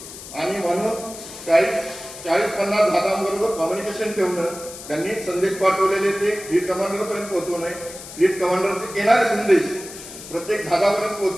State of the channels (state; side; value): noise; left; hiss, 14 dB below the sound